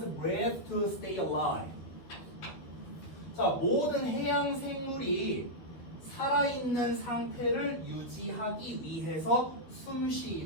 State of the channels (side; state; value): right; late; 12 ms